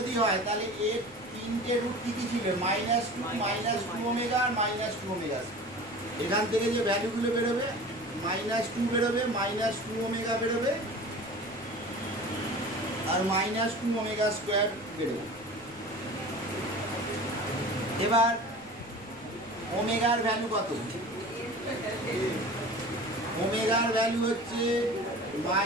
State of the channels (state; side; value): noise; left; rumble, 25 dB below the sound